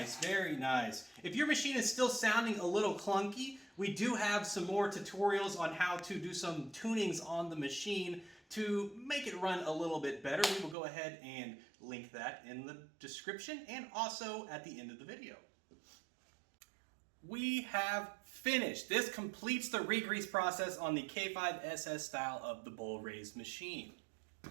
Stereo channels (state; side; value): drops out; left; at 10.8 s